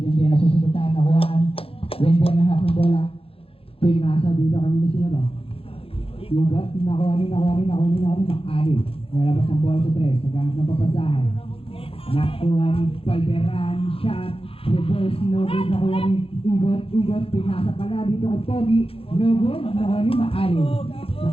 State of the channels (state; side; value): late; right; 0.27 ms